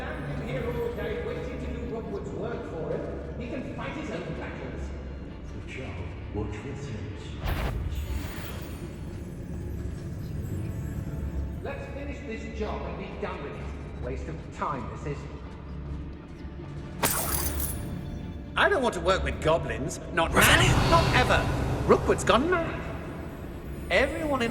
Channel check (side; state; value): both; identical; correlation 1.00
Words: here all day waiting to do Rockwood's work for him. He can fight his own battles. The child, watch this sense. Let's finish this job and be done with it. Waste of time, this is. I don't want to work with goblins. Not now, not ever. Rookwood's gone mad. Everyone